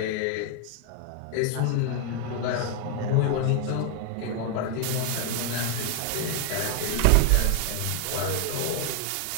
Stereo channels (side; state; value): both; different; correlation 0.00